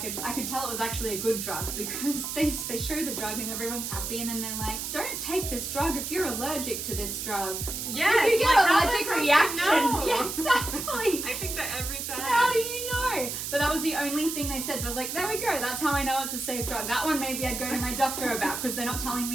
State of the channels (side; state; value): right; noise; hiss, 4 dB below the sound